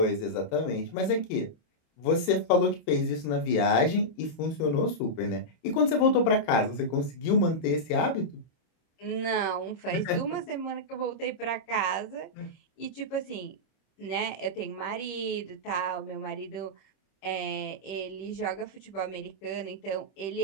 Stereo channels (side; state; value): right; late; 26 ms